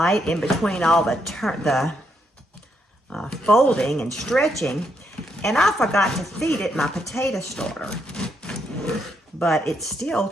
in between all the folding and stretching, and I forgot to feed it my potato starter. But it still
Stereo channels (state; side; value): normal; both; correlation 0.77